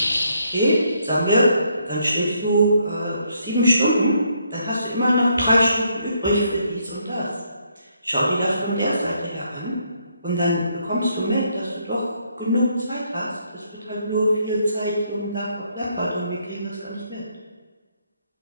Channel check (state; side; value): inverted; both; correlation -0.72